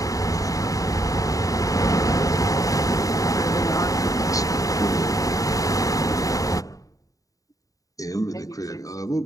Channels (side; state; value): right; late; 0.17 ms